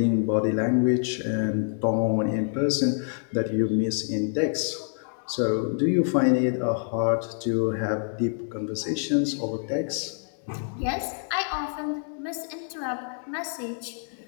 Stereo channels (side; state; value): right; silent; 55 dB below the other